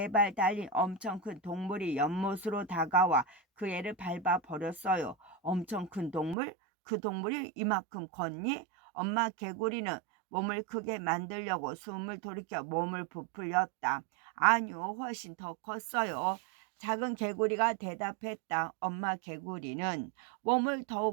달린 엄청 큰 동물이 연못으로 다가와 그 애를 밟아 버렸어요. 엄청 큰 동물? 그 동물이 이만큼 컸니? 엄마 개구리는 몸을 크게 만들려고 숨을 돌이켜 몸을 부풀렸다. 아니요, 훨씬 더 컸어요. 작은 개구리가 대답했다. 엄마 개구리는 몸을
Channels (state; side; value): drops out; left; at 6.4 s